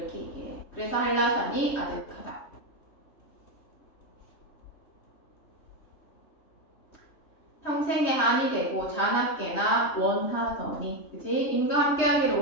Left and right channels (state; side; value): late; right; 3.2 ms